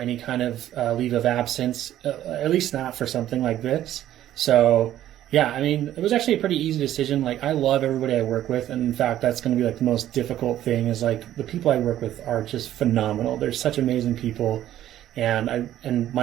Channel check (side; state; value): left; quieter; 12.5 dB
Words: kind of leave of absence, at least not for something like this. So yeah, I mean, it was actually a pretty easy decision. Like, I love everybody I work with. And in fact, that's going to be like the most difficult thing, is like the people I work with are just phenomenal. They're such amazing people. And